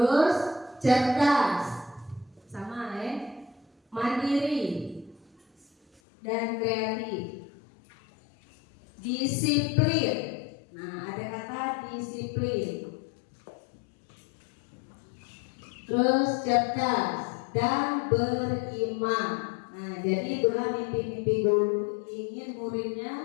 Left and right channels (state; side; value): drops out; right; at 6.0 s